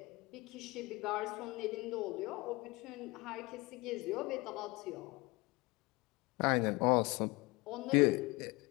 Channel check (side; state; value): right; quieter; 23.7 dB